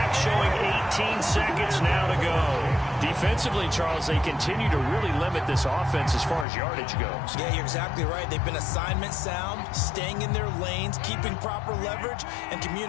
showing 18 seconds now to go. Defensively, Charles, they continue to really limit this offense as far as yardage goes. Yeah, you're exactly right. They've been assignment sound, staying in their lanes, keeping proper leverage, and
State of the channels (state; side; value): drops out; right; at 6.5 s